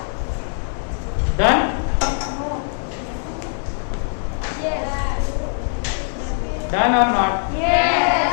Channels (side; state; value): right; silent; 65 dB below the other